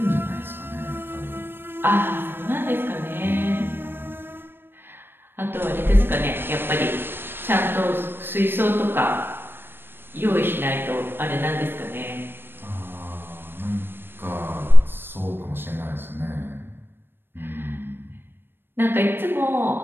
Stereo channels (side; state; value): left; late; 0.10 ms